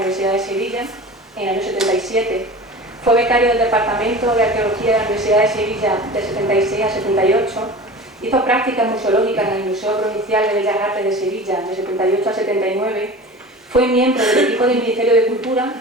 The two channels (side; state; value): both; normal; correlation 0.36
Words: de Sevilla, en el año 77. Fue becario del Departamento de Arqueología de la Universidad de Sevilla de 76 a 78. Hizo prácticas museológicas en el Museo Provincial de Bellas Artes de Sevilla de 78 a 79. Fue miembro del equipo del Ministerio de Cultura